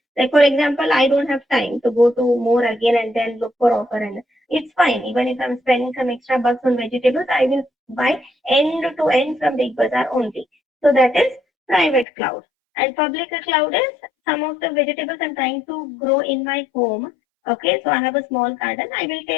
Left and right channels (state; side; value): drops out; right; at 12.1 s